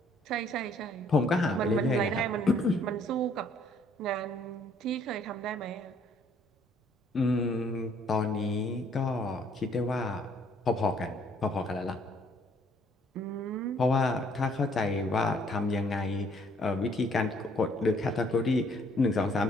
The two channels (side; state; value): both; normal; correlation 0.63